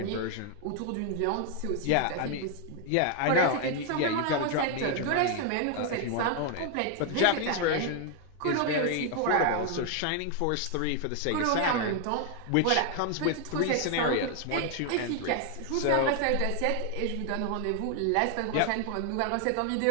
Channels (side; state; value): both; different; correlation 0.01